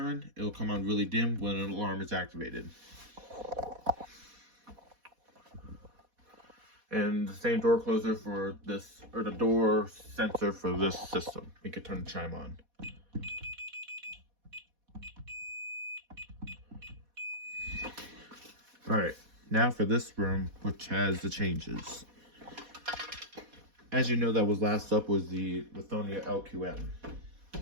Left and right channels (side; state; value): left; late; 4.1 ms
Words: It'll come on really dim when an alarm is activated. And the same door closer for this, or the door sensor for this system. We could turn the chime on. Alright, now for this room, which has the changes. As you know, that was last up was the Lithonia LQM